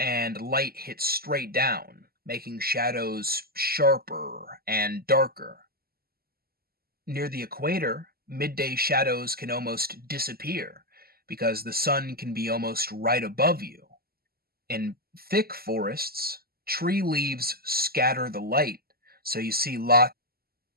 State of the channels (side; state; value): left; late; 0.45 ms